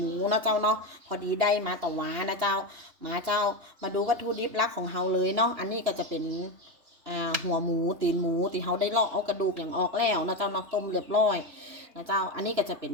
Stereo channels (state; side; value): late; left; 3.1 ms